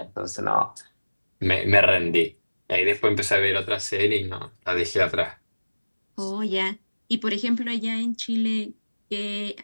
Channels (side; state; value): both; inverted; correlation -1.00